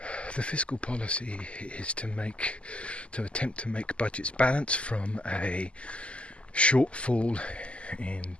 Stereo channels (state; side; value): late; right; 0.056 ms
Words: The fiscal policy is to attempt to make budgets balance from a shortfall in